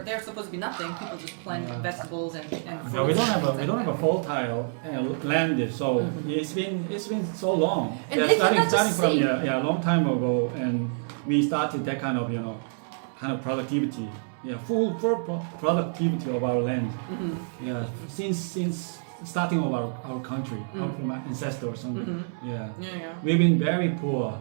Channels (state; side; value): silent; left; 60 dB below the other